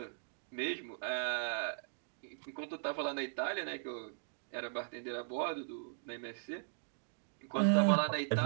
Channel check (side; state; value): left; silent; digital silence